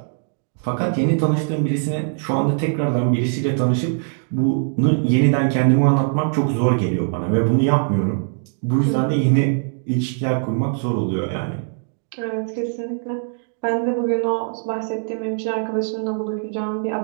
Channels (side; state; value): left; silent; digital silence